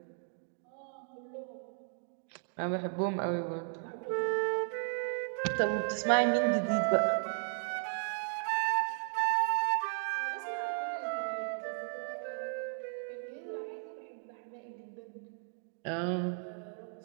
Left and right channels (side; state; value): left; silent; 54 dB below the other